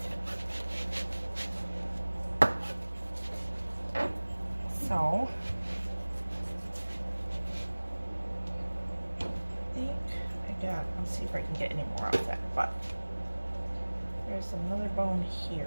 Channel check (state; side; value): inverted; both; correlation -1.00